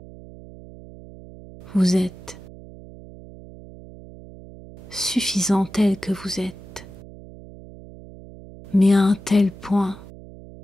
Vous êtes suffisant tel que vous êtes, mais à un tel point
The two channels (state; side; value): noise; right; hum, 18 dB below the sound